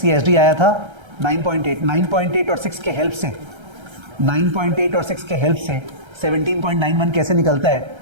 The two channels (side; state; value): left; late; 1.3 ms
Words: ये एसडी आया था 9.8। 9.8 और 6 के हेल्प से, 9.8 और 6 के हेल्प से 17.91 कैसे निकलता है